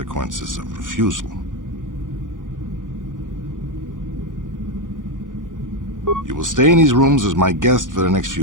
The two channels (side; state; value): left; late; 0.88 ms